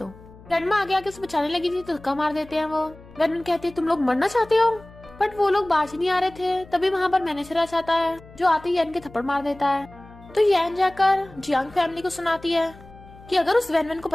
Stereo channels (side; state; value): left; noise; hum, 21 dB below the sound